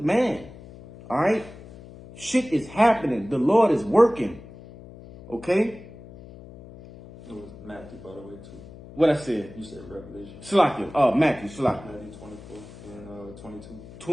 man. All right? Shit is happening. The Lord is working. Okay? It was Matthew, by the way, too. What I said? You said Revelation. Salakia. Matthew, Salakia. Matthew 24 and 22.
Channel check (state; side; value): noise; left; hum, 17 dB below the sound